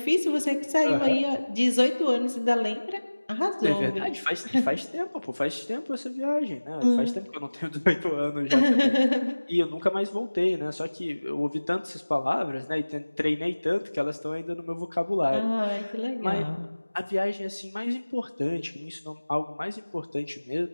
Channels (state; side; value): inverted; both; correlation -1.00